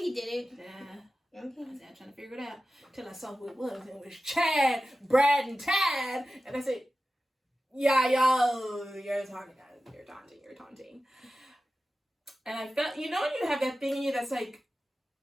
did it. Nah. Okay. I was trying to figure it out till I saw who it was. And it was Chad, Brad, and Tad. And I said, yeah, yo, you're talking, you're taunting. And I felt, you know when you have that thing in you that's like,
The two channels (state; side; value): normal; both; correlation 0.94